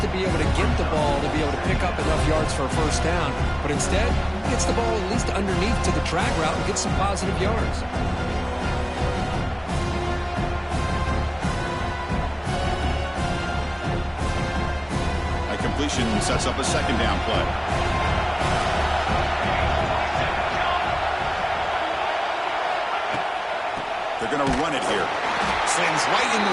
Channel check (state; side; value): identical; both; correlation 1.00